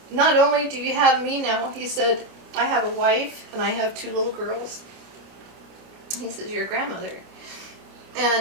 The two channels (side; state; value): left; late; 29 ms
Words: only do you have me now, he said, I have a wife and I have 2 little girls. He says, you're a grandmother.